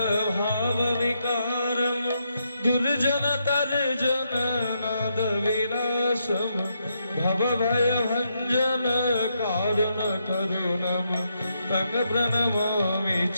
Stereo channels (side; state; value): both; inverted; correlation -0.79